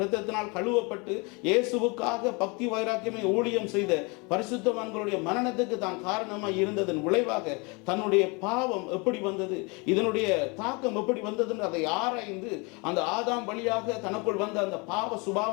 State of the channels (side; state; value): right; quieter; 29.4 dB